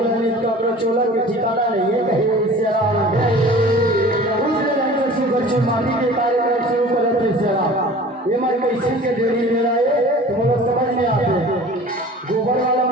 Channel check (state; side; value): normal; both; correlation 0.43